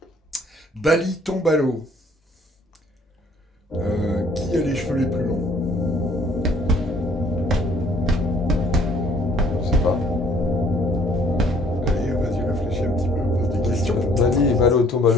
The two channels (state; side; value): normal; both; correlation 0.59